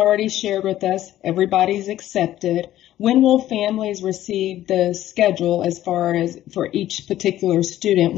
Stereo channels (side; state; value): right; quieter; 13.4 dB